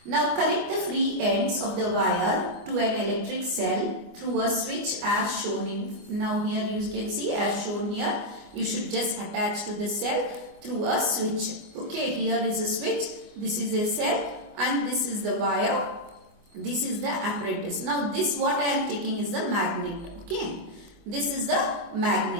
Now connect the free ends of the wire to an electric cell through a switch as shown in. Now here you can see as shown here. You should just attach to the cell through a switch. Okay, here is a switch. This is a cell and this is the wire. This is the apparatus. Now this what I am taking is the magnet. Okay, this is the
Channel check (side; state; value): left; late; 25 ms